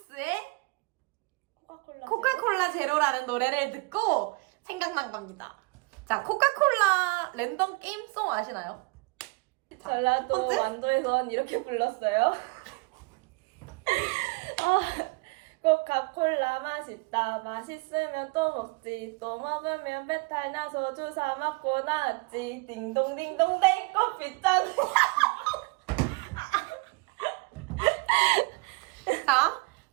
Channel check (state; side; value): quieter; left; 28.3 dB